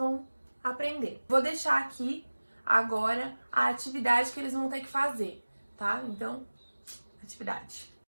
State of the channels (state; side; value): inverted; both; correlation -1.00